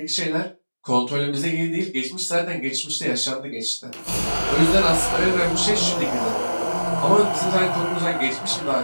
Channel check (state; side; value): inverted; both; correlation -1.00